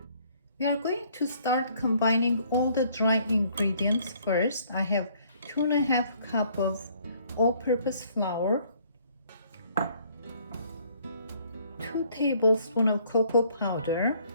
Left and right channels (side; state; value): both; inverted; correlation -0.62